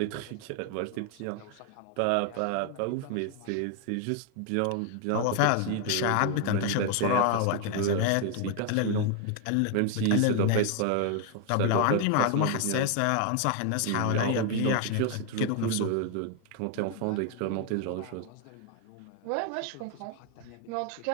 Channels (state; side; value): different; both; correlation 0.00